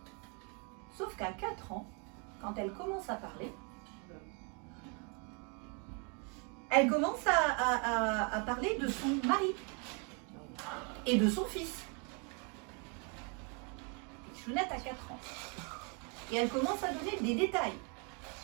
Sauf qu'à 4 ans, quand elle commence à parler, elle commence à parler de son mari et de son fils. Chounette a 4 ans. Et elle commence à donner des détails.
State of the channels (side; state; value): left; quieter; 35.5 dB